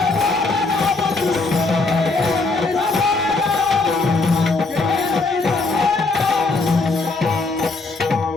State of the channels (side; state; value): right; quieter; 3.6 dB